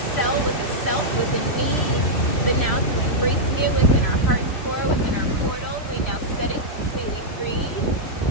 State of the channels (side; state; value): right; late; 3.1 ms